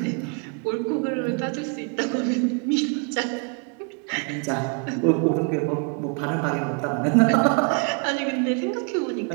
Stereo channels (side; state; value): left; quieter; 37.8 dB